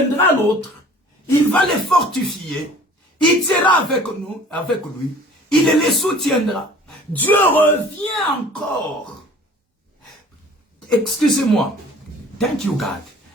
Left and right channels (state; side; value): normal; both; correlation 0.48